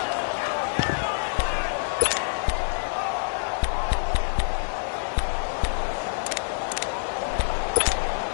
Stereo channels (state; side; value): silent; right; digital silence